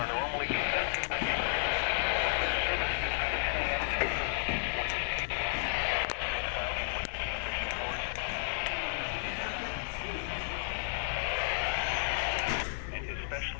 normally affected by the service. And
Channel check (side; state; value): right; silent; digital silence